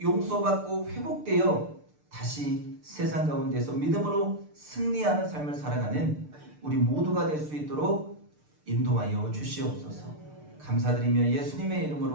용서받고 회복되어 다시 세상 가운데서 믿음으로 승리하는 삶을 살아가는 우리 모두가 될 수 있도록 인도하여 주시옵소서. 감사드리며 예수님의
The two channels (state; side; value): late; left; 6.7 ms